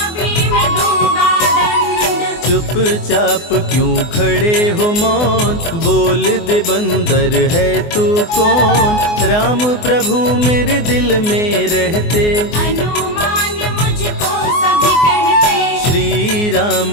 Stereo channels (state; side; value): late; right; 24 ms